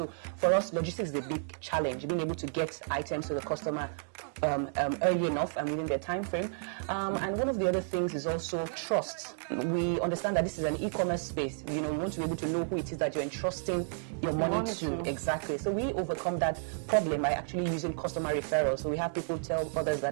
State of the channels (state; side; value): silent; left; digital silence